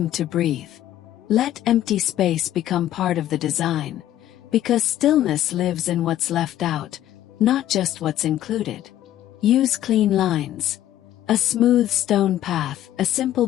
to breathe. Let empty space become part of the design, because stillness lives in what's left out, not just what's included. Use clean lines. A smooth stone path, a simple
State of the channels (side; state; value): right; quieter; 12.6 dB